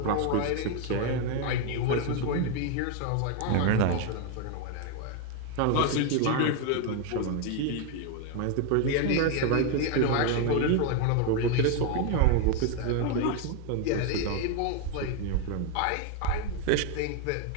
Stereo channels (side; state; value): both; different; correlation 0.01